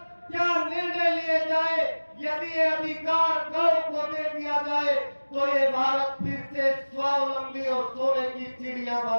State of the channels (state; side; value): inverted; both; correlation -1.00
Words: क्या निर्णय लिए जाए, यदि ये अधिकार गांव को दे दिया जाए, तो ये भारत फिर से स्वावलंबी और सोने की चिड़िया